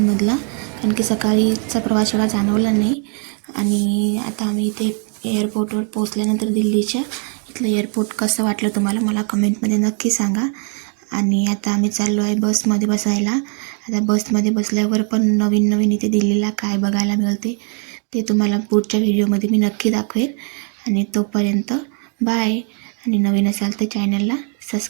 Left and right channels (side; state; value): left; quieter; 39.2 dB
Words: कारण की सकाळीचा प्रवास एवढा जाणवला नाही. आणि आता आम्ही इथे एअरपोर्टवर पोहोचल्यानंतर दिल्लीच्या इथलं एअरपोर्ट कसं वाटलं तुम्हाला मला कमेंटमध्ये नक्की सांगा. आणि आता आम्ही चाललो आहे बसमध्ये बसायला. आता बसमध्ये बसल्यावर पण नवीन इथे दिल्लीला काय बघायला मिळते ते तुम्हाला पुढच्या व्हिडिओमध्ये मी नक्की दाखवेन. आणि तोपर्यंत बाय. आणि नवीन असाल तर चॅनलला